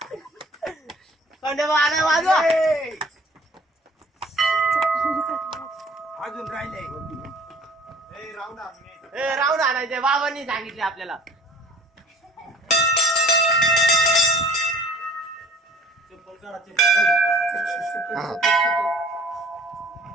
खंडोबा आलाय वाजवा अजून राहिले राऊंड आणायचे बाबांनी सांगितले आपल्याला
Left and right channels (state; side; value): normal; both; correlation 0.50